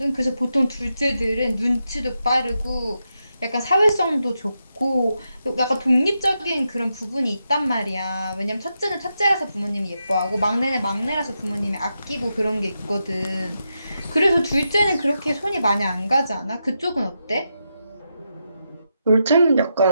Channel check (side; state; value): both; inverted; correlation -0.85